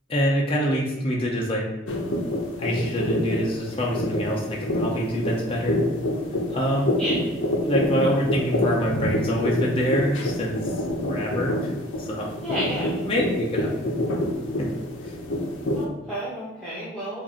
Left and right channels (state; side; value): normal; both; correlation 0.47